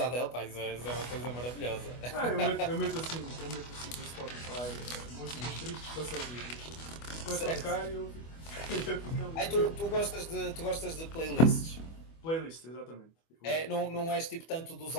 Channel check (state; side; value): late; right; 25 ms